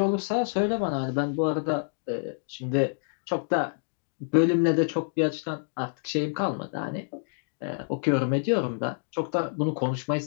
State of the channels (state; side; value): silent; right; digital silence